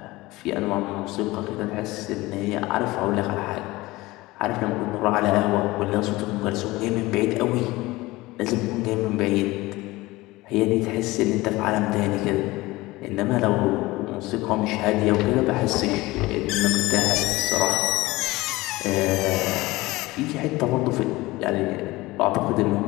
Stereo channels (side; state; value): right; quieter; 20.1 dB